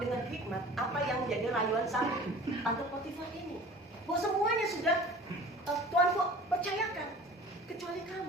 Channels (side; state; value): both; normal; correlation 0.43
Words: hikmat apa yang menjadi rayuan sang tante Potifar ini. Bahwa semuanya sudah Tuhan percayakan, kecuali